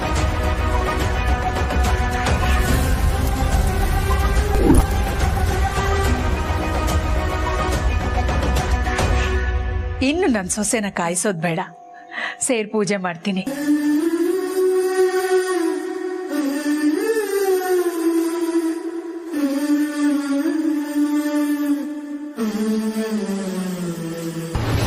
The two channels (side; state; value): both; identical; correlation 1.00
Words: ಇನ್ನು ನನ್ನ ಸೊಸೆನ ಕಾಯಿಸೋದು ಬೇಡ, ಸೇರ್ ಪೂಜೆ ಮಾಡ್ತೀನಿ.